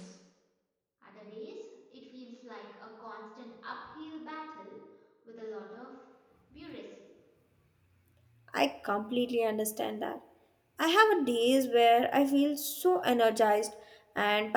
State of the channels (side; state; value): both; identical; correlation 1.00